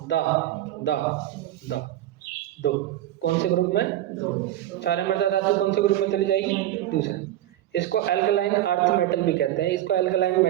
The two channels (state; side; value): quieter; left; 13.4 dB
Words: दा दा दा 2 कौन से ग्रुप में? 2। क्षारीय मृदा धातु कौन से ग्रुप में चली जाएगी? दूसरे में। इसको एल्कलाइन अर्थ मेटल भी कहते हैं, इसको एल्कलाइन